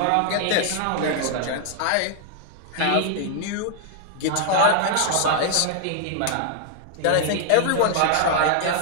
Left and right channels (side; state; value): both; different; correlation 0.00